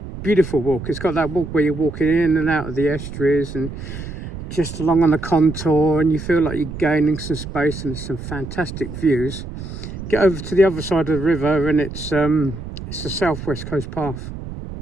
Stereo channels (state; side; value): noise; right; rumble, 9 dB below the sound